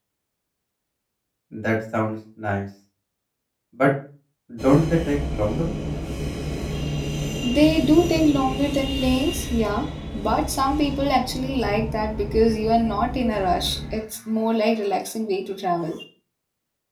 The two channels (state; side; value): identical; both; correlation 1.00